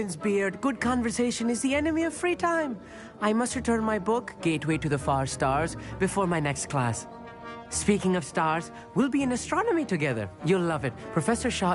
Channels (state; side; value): identical; both; correlation 1.00